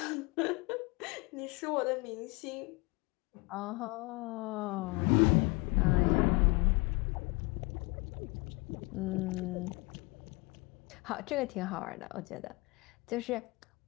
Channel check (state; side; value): quieter; right; 26.4 dB